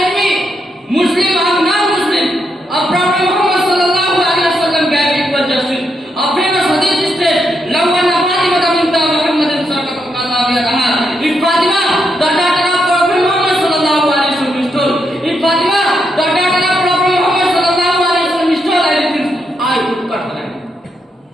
Muslim or non-Muslim, a Prophet Muhammad sallallahu alaihi wasallam gave equal justice. A famous hadith says, "Law anna Fatima bint Muhammadin saqatat qadawiyataha." If Fatima, the daughter of Prophet Muhammad sallallahu alaihi wasallam, stole. If Fatima, the daughter of Prophet Muhammad sallallahu alaihi wasallam, stole anything, I would cut her hand.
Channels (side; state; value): both; normal; correlation 0.80